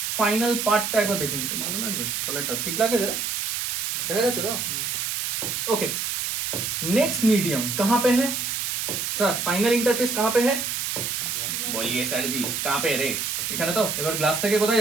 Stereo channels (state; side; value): noise; right; hiss, 1 dB below the sound